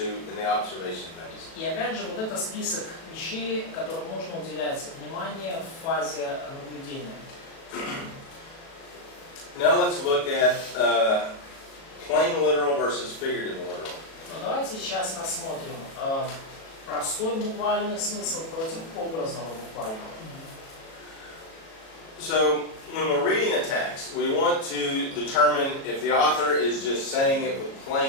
in the observation phase. И опять же, вот это список вещей, которым нужно уделять внимание в фазе наблюдения. Now let's look at plain literal versus figurative literal. Но давайте сейчас рассмотрим простой буквальный смысл против образного буквального. So when we're reading a text, we want to determine if the author is just saying it with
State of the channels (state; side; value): late; right; 37 ms